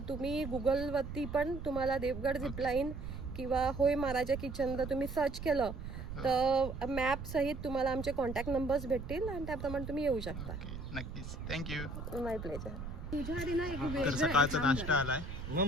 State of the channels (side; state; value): right; noise; rumble, 8 dB below the sound